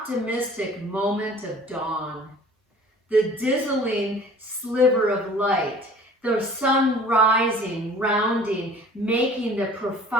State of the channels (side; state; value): both; normal; correlation 0.48